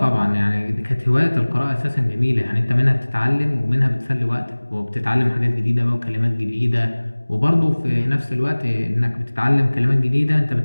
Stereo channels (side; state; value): both; inverted; correlation -1.00